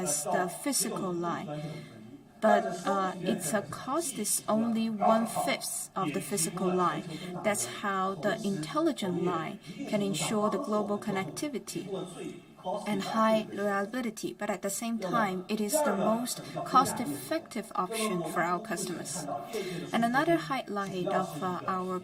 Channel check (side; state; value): both; identical; correlation 1.00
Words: the physical line. But its cost is only 1/5 of the physical line. That's how the intelligent line can ensure the global connectivity and high reliability, but at the same time, it is the most cost-effective option for our customers. And another highlight of our